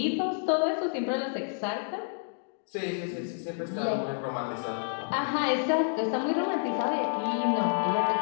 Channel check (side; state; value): right; silent; digital silence